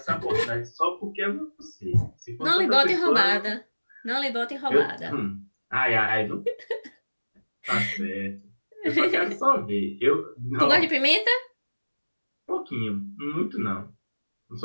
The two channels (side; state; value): both; inverted; correlation -1.00